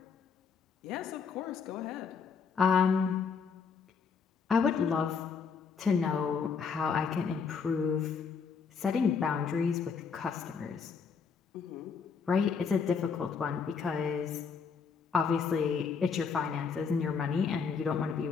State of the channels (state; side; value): quieter; right; 5.8 dB